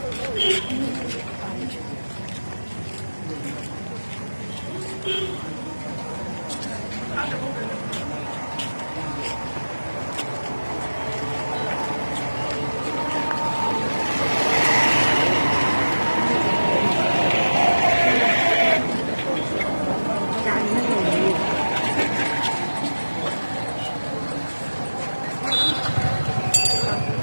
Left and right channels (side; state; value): both; inverted; correlation -1.00